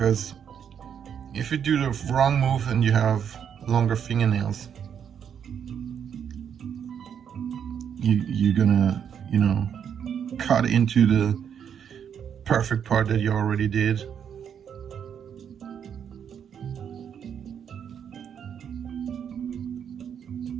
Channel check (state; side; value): quieter; left; 8.2 dB